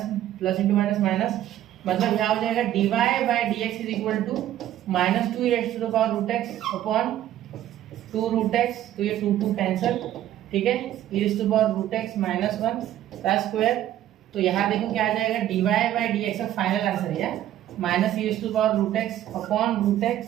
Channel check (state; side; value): quieter; left; 12.5 dB